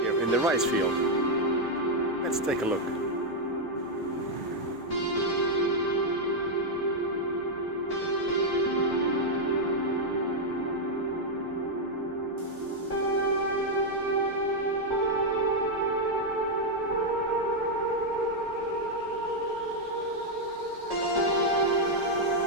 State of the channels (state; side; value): normal; both; correlation -0.01